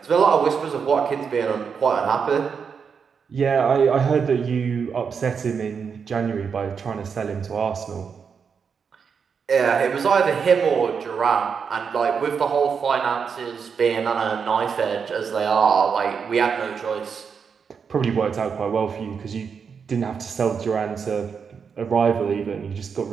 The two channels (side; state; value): left; quieter; 6.3 dB